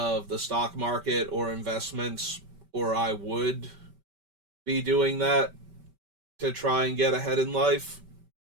the stock market or investments, or I would be doing that to try and get ahead in life.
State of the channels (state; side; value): late; left; 5.2 ms